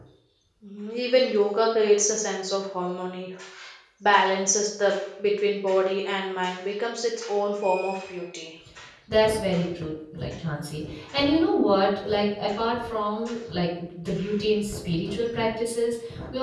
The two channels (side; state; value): both; identical; correlation 1.00